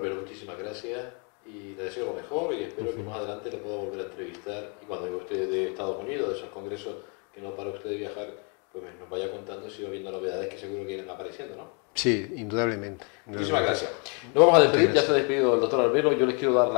muchísimas gracias y le deseo lo mejor y espero que más adelante le pueda volver a entrevistar y cuando venga usted de Estados Unidos, de esos congresos que no para usted de viajar, pues nos vaya contando si va viendo novedades que seguro que irán apareciendo, ¿no? Sí, indudablemente. Muchísimas gracias. Nos vamos a despedir, ya se ha despedido el doctor Arbelo. Yo les quiero dar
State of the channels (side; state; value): right; quieter; 35.9 dB